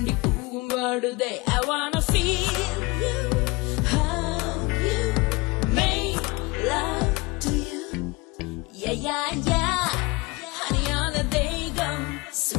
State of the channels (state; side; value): quieter; right; 24.8 dB